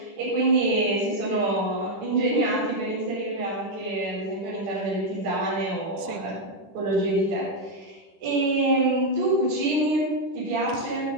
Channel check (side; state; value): left; late; 10 ms